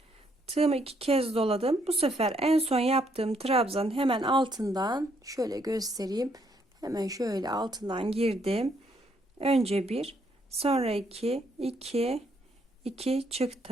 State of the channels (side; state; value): both; normal; correlation 0.71